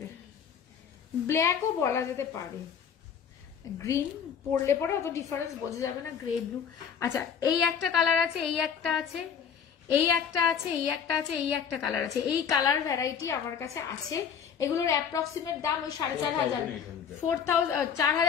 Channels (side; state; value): right; quieter; 7.3 dB